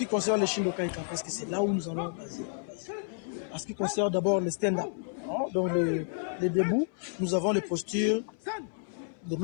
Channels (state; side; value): silent; right; 57 dB below the other